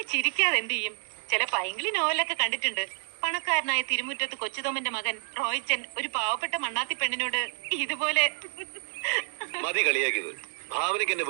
ചിരിക്കാതെ എന്ത് ചെയ്യും? ചില പൈങ്കിളി നോവലൊക്കെ കണ്ടിട്ടുണ്ട്. പണക്കാരനായ തിരുമുറ്റത്ത് കൊച്ചുതോമന്റെ മകൻ റോയിച്ചൻ ഒരു പാവപ്പെട്ട മണ്ണാത്തി പെണ്ണിനോട് ഇതുപോലെ. മതി കളിയാക്കിയത്. ഭാവനയ്ക്ക് എന്നെ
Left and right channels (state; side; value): silent; left; 59 dB below the other